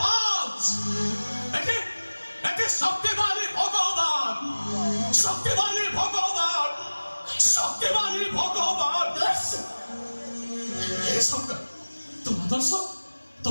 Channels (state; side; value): inverted; both; correlation -1.00